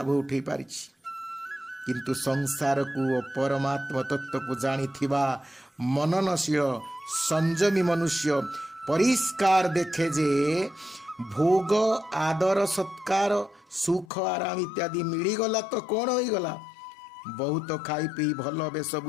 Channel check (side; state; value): right; drops out; at 14.1 s